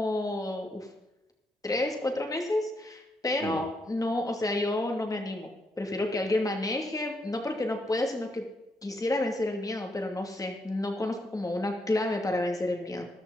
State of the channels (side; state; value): both; normal; correlation 0.78